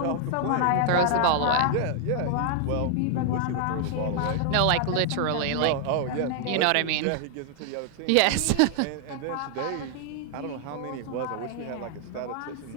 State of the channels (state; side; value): different; both; correlation 0.00